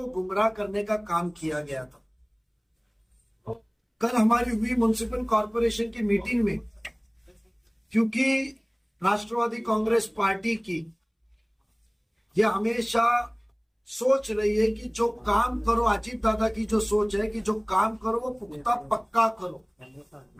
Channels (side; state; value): both; identical; correlation 1.00